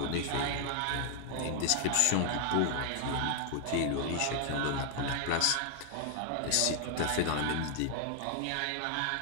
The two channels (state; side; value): different; both; correlation 0.00